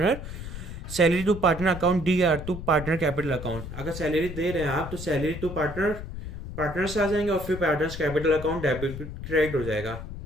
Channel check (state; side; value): noise; left; rumble, 9 dB below the sound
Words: salary to partner account D R to partner capital account. अगर सैलरी दे रहे हैं आप तो सैलरी टू पार्टनर, पार्टनर्स आ जाएंगे और फिर partners capital account debit credit हो जाएगा।